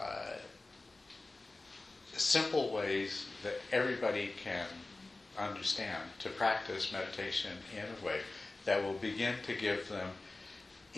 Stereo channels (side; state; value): right; quieter; 3.1 dB